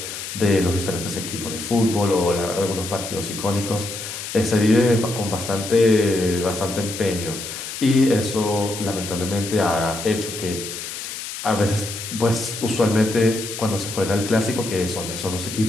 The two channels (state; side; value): noise; left; hiss, 8 dB below the sound